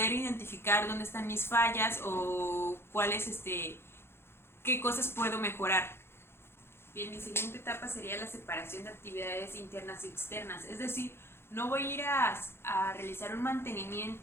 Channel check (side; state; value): right; late; 0.12 ms